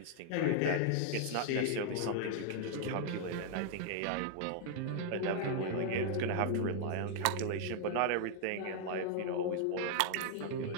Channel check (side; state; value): both; different; correlation -0.01